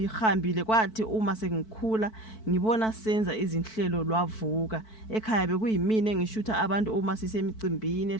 kwathi uma sengikhula ngibona senza izinhlelo lwavuka. Ekhaya bekuyimina engishutha abantu uma sisemicimbini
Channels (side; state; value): right; late; 4.6 ms